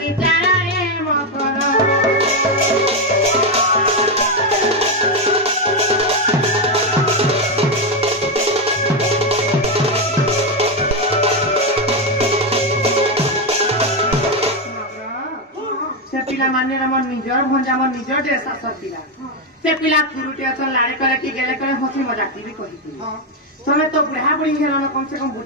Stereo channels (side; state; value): both; normal; correlation 0.07